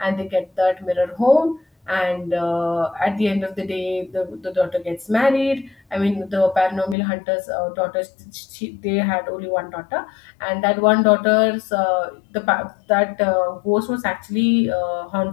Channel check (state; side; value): drops out; right; at 7.0 s